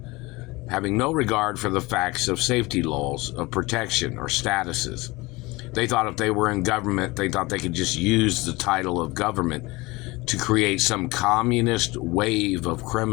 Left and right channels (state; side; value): quieter; right; 22.5 dB